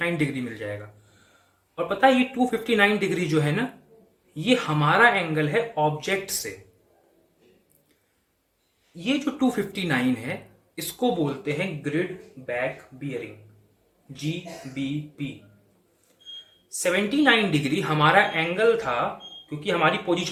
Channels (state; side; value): identical; both; correlation 1.00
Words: डिग्री मिल जाएगा। और पता है ये 259 डिग्री जो है ना, ये हमारा एंगल है ऑब्जेक्ट से। ये जो 259 है इसको बोलते हैं grid back bearing, GBP। 79 degree हमारा एंगल था, क्योंकि हमारी